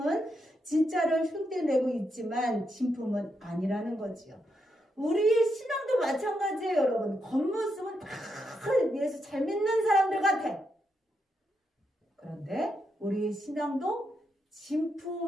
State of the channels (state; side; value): normal; both; correlation 0.82